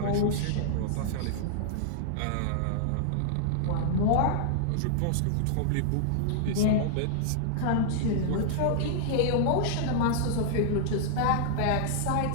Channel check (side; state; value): both; different; correlation -0.01